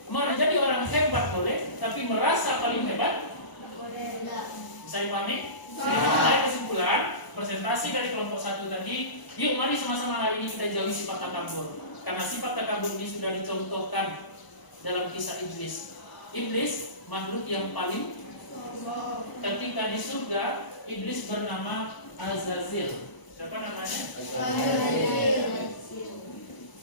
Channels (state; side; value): late; right; 1.0 ms